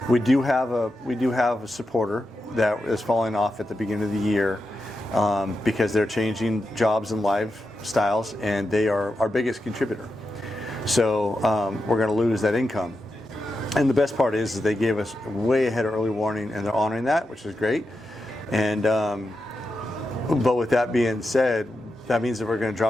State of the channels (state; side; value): normal; both; correlation 0.89